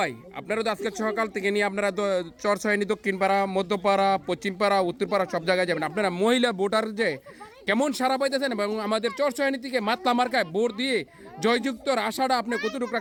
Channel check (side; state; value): both; identical; correlation 1.00